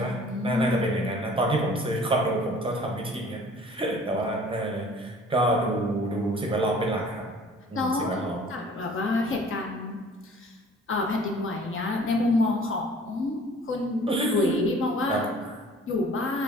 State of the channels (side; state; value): both; normal; correlation 0.51